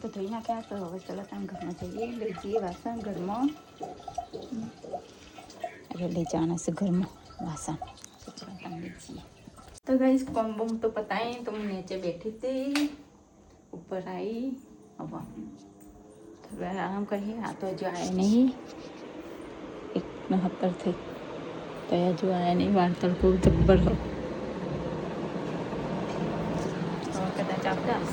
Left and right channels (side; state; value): both; identical; correlation 1.00